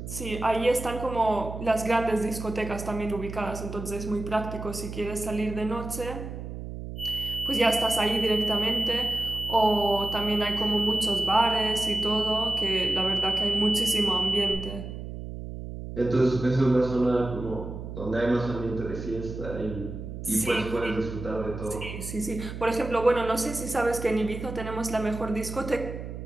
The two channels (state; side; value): noise; right; hum, 9 dB below the sound